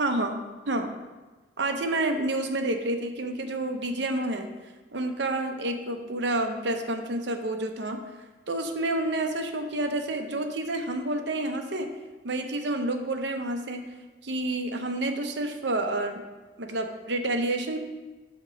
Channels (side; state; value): both; normal; correlation 0.06